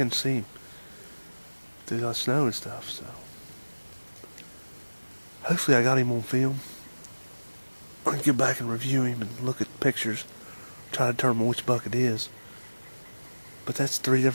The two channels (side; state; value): both; inverted; correlation -1.00